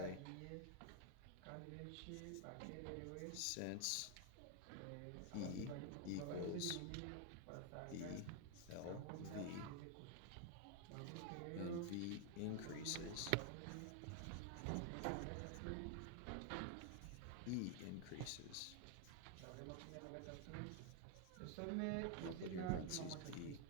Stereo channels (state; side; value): different; both; correlation 0.01